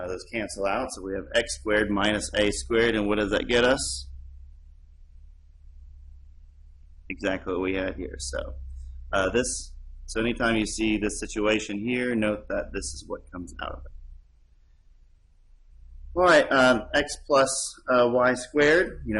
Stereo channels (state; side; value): identical; both; correlation 1.00